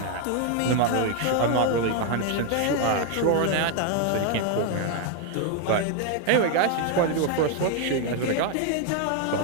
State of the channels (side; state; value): both; different; correlation 0.01